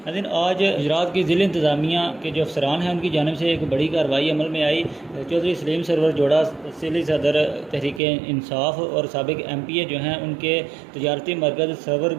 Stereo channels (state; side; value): drops out; left; at 8.0 s